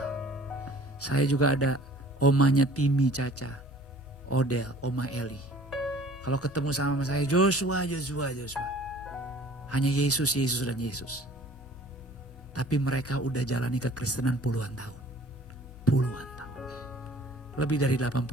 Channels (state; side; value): normal; both; correlation 0.51